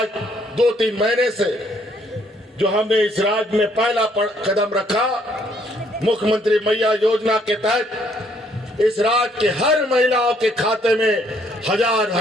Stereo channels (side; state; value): both; normal; correlation 0.67